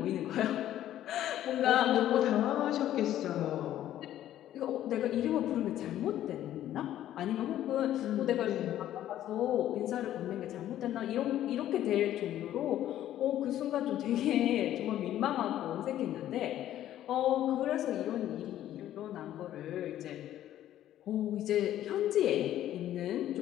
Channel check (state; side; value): quieter; right; 12.4 dB